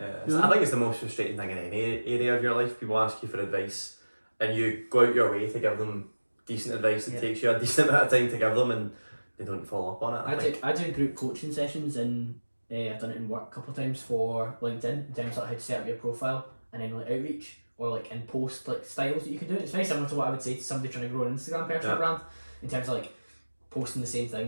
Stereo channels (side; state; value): both; inverted; correlation -1.00